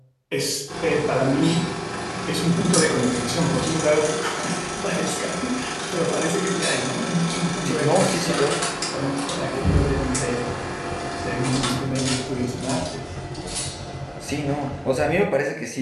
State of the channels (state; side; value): identical; both; correlation 1.00